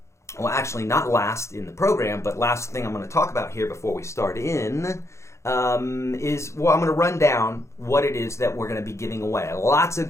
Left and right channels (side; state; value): right; late; 0.14 ms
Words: well, actually not last in the program, but last thing I'm going to talk about here before we start in is, I'm going to run down what it is that we're going to be giving away. Lots of